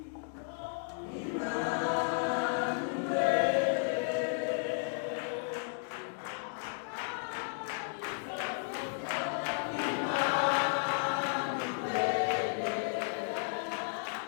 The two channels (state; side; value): silent; right; digital silence